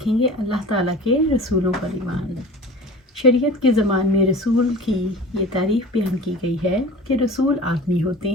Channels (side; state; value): both; normal; correlation 0.38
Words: گے اللہ تعالیٰ کے رسولوں پر ایمان۔ شریعت کے زمان میں رسول کی یہ تعریف بیان کی گئی ہے کہ رسول آدمی ہوتے